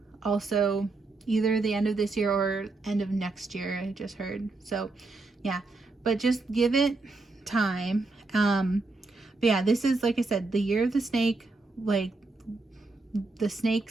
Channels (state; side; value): quieter; left; 3.5 dB